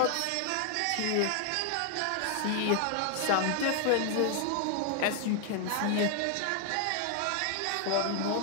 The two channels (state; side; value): different; both; correlation 0.00